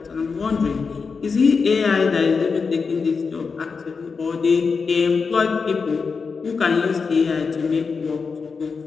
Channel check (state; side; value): quieter; right; 5.1 dB